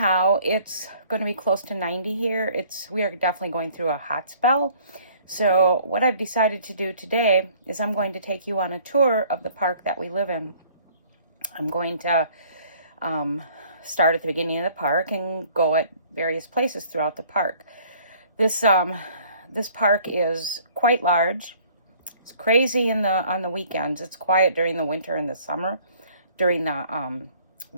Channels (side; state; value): both; inverted; correlation -0.56